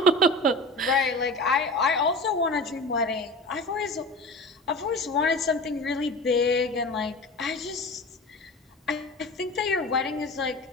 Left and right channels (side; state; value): both; normal; correlation 0.34